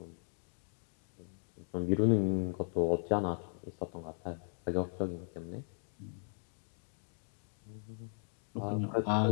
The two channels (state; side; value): silent; right; digital silence